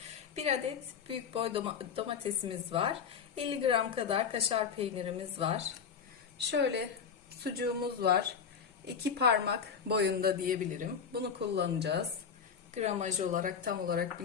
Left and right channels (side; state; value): right; quieter; 6.7 dB